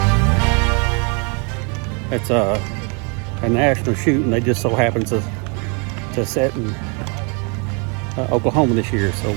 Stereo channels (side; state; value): left; quieter; 34.6 dB